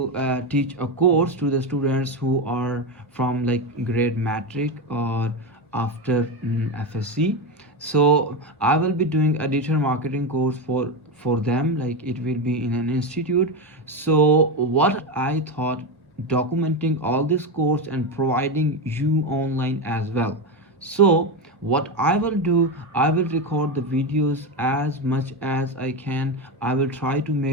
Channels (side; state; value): both; normal; correlation 0.14